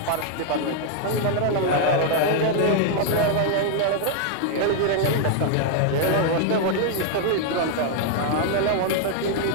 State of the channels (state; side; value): different; both; correlation 0.00